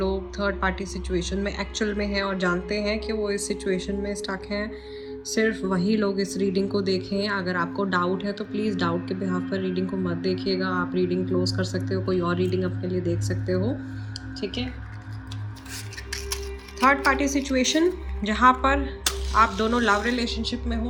थर्ड पार्टी सिचुएशन में एक्चुअल में हैं और जानते हैं कि वो इस सिचुएशन में स्टक हैं, सिर्फ वही लोग इस रीडिंग को देखें। अगर आपको डाउट है तो प्लीज़ डाउट के बिहाफ पर रीडिंग को मत देखिएगा। आप रीडिंग क्लोज कर सकते हो, कोई और रीडिंग अपने लिए देख सकते हो, ठीक है। थर्ड पार्टी सिचुएशन जहाँ पर आप दोनों लव रिलेशनशिप में हो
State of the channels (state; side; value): identical; both; correlation 1.00